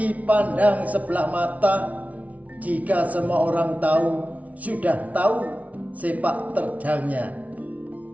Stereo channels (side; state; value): left; late; 0.069 ms